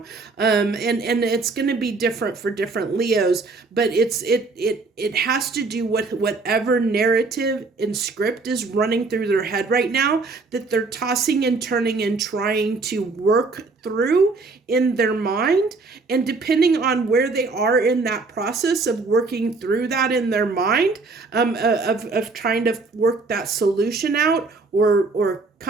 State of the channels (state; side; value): quieter; left; 3.9 dB